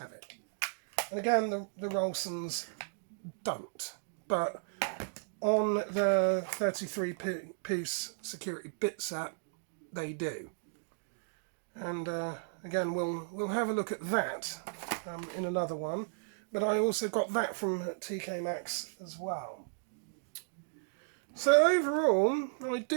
it. And again, the Rolsons don't, but on the 33-piece security bit set, they do. And again, we'll have a look at that in another one. But I also got that from TK Maxx as well. So overall, I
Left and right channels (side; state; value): left; silent; digital silence